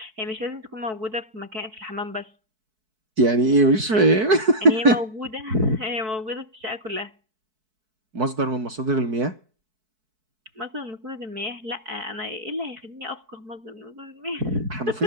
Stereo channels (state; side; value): late; left; 4.6 ms